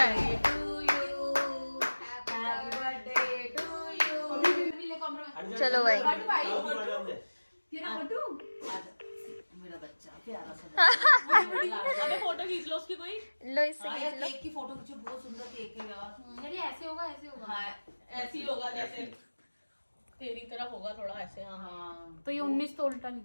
है। चलो भाई मेरा बच्चा प्यारा सा अबे फोटो खींच लो उसकी कोई। लो इससे हाँ खींच यार, लो। केक की फोटो खींचो, बहुत सुंदर केक है यार। अरे ऐसे होगा ऐसे होगा। हाँ ऐसी होगा जैसे तेरी तरफ होगा थोड़ा ऐसे। हाँ हाँ तो ये 19 तो उल्टा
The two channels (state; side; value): inverted; both; correlation -1.00